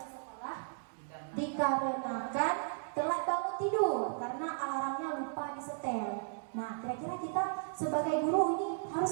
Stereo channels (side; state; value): left; silent; digital silence